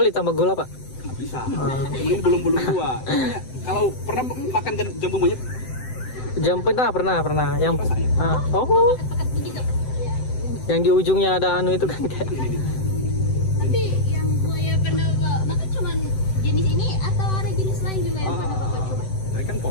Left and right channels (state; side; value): late; right; 7.8 ms